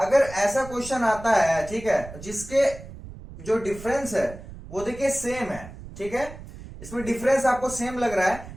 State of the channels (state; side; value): noise; right; rumble, 14 dB below the sound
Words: ऐसा क्वेश्चन आता है, ठीक है, जिसके जो डिफरेंस है वो देखिए सेम है, ठीक है, इसमें डिफरेंस आपको सेम लग रहा है,